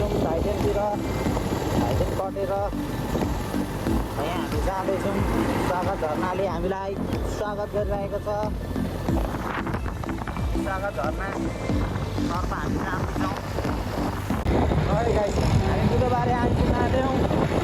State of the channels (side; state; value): both; identical; correlation 1.00